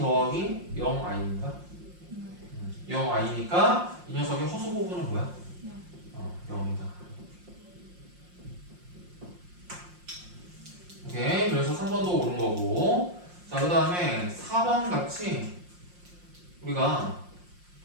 0i니까 0i니까 이 녀석의 허수 부분은 뭐야? 0이다. 오케이. 그래서 3번도 옳은 거고. 자, 그 다음에 4번 같이 우리가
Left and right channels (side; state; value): left; late; 5.6 ms